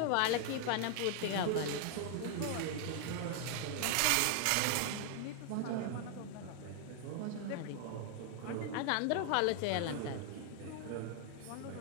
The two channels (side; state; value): both; different; correlation 0.00